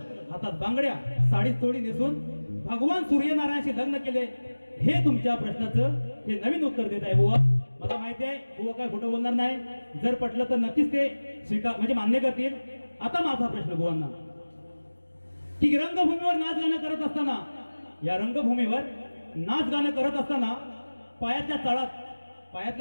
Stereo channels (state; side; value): inverted; both; correlation -1.00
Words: हातात बांगड्या, साडी चोळी नेसून भगवान सूर्यनारायणशी लग्न केले. हे तुमच्या प्रश्नाचं हे नवीन उत्तर देत आहे बुवा. मला माहिती आहे बुवा काय खोटं बोलणार नाही. जर पटलं तर नक्कीच ते स्वीकार म्हणजे मान्य करतील. आता माझा प्रश्न बुवांना, की रंगभूमीवर नाच गाणं करत असताना, या रंगभूमीवर नाच गाणं करत असताना पायातल्या